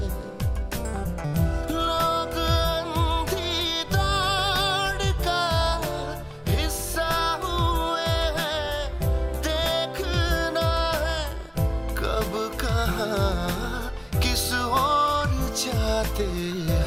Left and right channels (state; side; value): identical; both; correlation 1.00